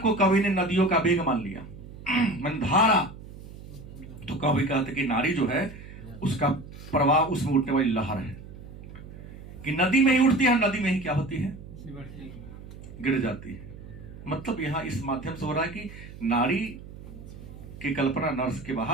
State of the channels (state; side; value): noise; right; hum, 15 dB below the sound